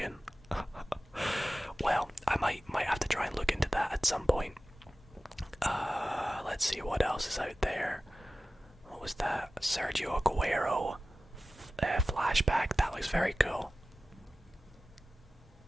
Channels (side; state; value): both; normal; correlation 0.95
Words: Well, I might have to try and look into that at some point. Let's see what else is out there. What was that? Sergio Aguero flashback. That looks very cool.